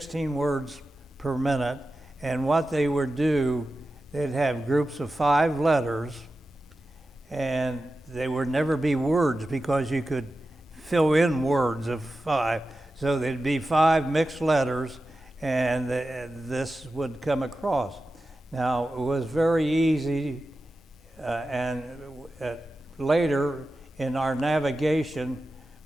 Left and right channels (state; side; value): normal; both; correlation 0.93